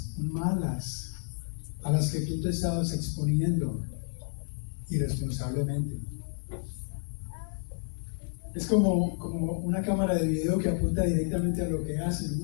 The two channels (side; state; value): right; silent; 57 dB below the other